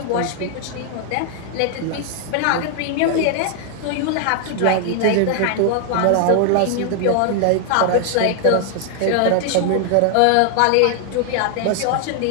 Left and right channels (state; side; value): different; both; correlation 0.00